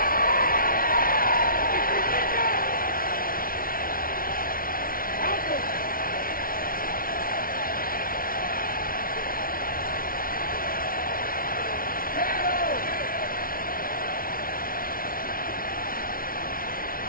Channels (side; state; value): right; late; 0.42 ms